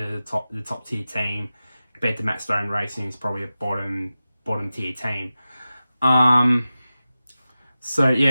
tier team compared to Matt Stone Racing is probably a bottom tier team. So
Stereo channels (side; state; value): both; inverted; correlation -0.94